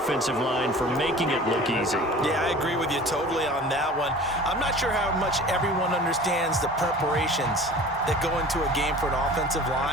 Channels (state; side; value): normal; both; correlation 0.42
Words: line for making it look easy. Yeah, I agree with you totally on that one. I'm not sure how much everyone understands the preparations that go into a game for an offensive